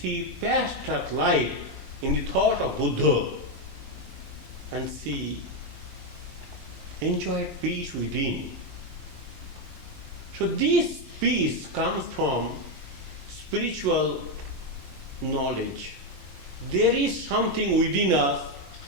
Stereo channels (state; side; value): late; left; 10 ms